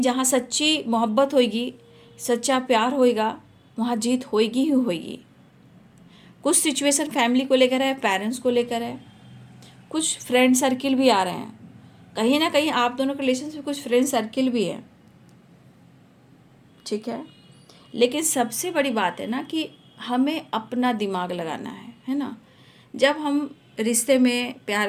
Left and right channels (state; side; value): identical; both; correlation 1.00